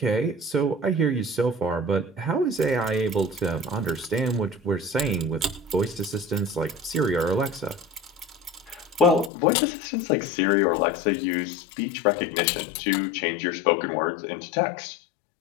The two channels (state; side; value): drops out; right; at 9.3 s